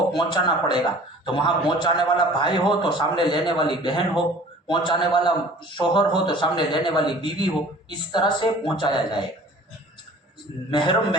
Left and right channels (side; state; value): both; normal; correlation 0.47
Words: पहुंचाना पड़ेगा, तो वहां पहुंचाने वाला भाई हो तो सामने लेने वाली बहन हो, पहुंचाने वाला शोहर हो तो सामने लेने वाली बीवी हो, इस तरह से पहुंचाया जाएगा, महरम